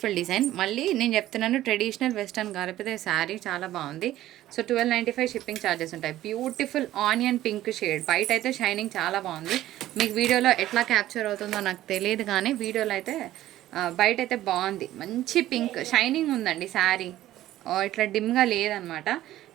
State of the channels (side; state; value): left; quieter; 14.2 dB